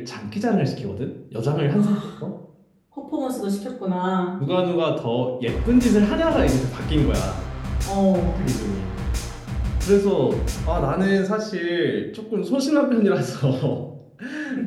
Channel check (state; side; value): identical; both; correlation 1.00